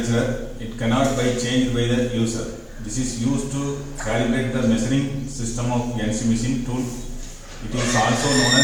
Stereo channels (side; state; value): both; identical; correlation 1.00